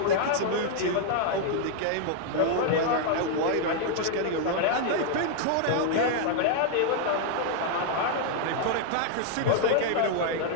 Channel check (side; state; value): both; different; correlation 0.00